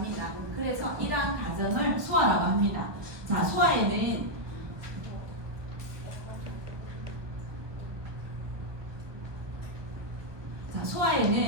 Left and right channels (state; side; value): late; left; 1.2 ms